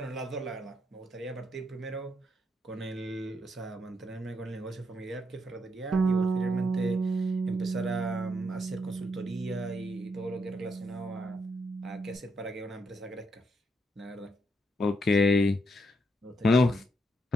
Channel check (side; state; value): both; normal; correlation 0.78